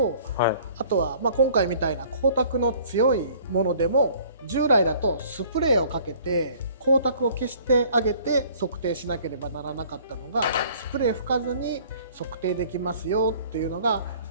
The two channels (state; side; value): inverted; both; correlation -0.53